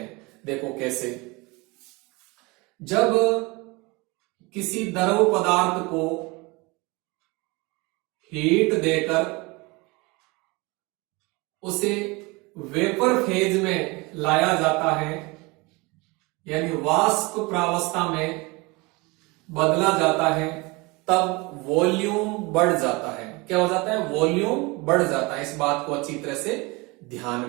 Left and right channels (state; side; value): quieter; left; 25.4 dB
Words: देखो कैसे, जब किसी द्रव पदार्थ को हीट देकर उसे वेपर फेज में लाया जाता है, यानी वाष्प प्रावस्था में बदला जाता है, तब वॉल्यूम बढ़ जाता है। क्या हो जाता है, वॉल्यूम बढ़ जाता है। इस बात को अच्छी तरह से ध्यान